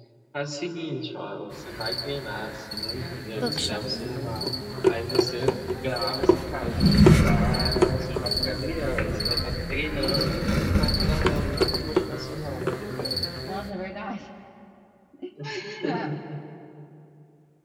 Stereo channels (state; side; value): identical; both; correlation 1.00